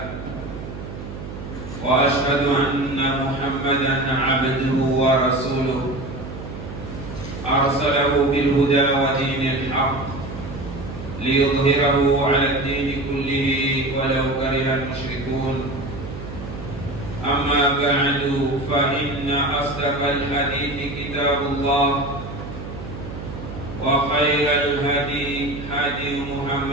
وأشهد أن محمدا عبده ورسوله أرسله بالهدى ودين الحق ليظهره على الدين كله ولو كره المشركون أما بعد فإن أصدق الحديث كتاب الله وخير الهدي هدي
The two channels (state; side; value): noise; right; hum, 10 dB below the sound